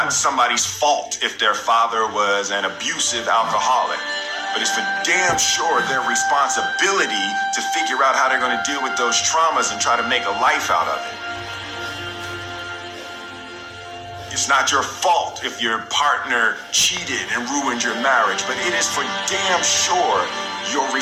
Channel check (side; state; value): both; identical; correlation 1.00